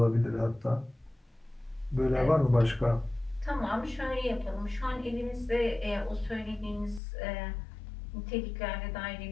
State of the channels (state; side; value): drops out; right; at 7.0 s